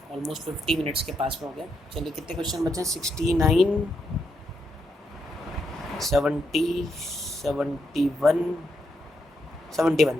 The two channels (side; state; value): both; normal; correlation 0.80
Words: 50 मिनट्स के पास में हो गया। चलिए कितने क्वेश्चन बचे हैं, 69, 70, 71,